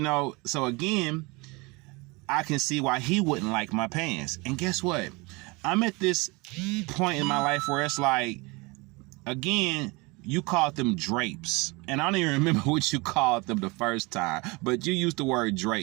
again, I can see why he wouldn't like my pants. And guess what? I'm at this point in my life where it's like, again, you called them drapes. And I don't even remember what you called them the first time, but you used the word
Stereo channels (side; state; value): left; quieter; 25.9 dB